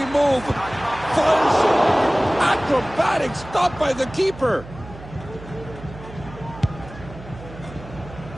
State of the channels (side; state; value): right; noise; hum, 16 dB below the sound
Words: move. Fires it. Acrobatic stop by the keeper.